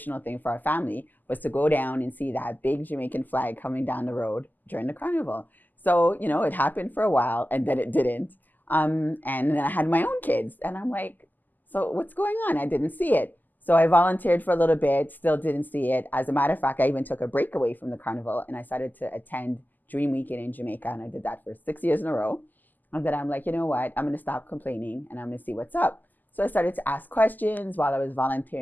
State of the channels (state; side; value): late; right; 0.085 ms